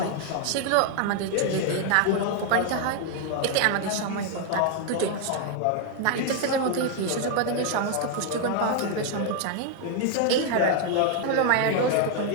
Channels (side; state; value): both; different; correlation 0.00